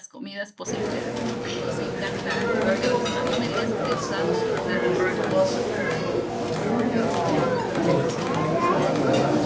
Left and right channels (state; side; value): identical; both; correlation 1.00